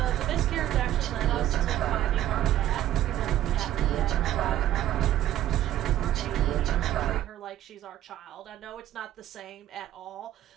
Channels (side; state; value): left; quieter; 12.9 dB